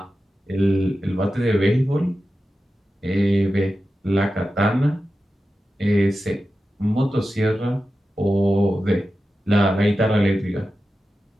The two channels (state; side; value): normal; both; correlation 0.92